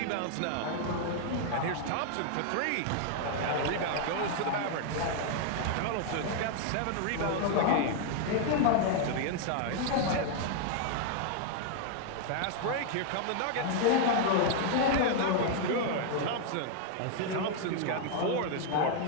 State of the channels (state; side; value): different; both; correlation 0.00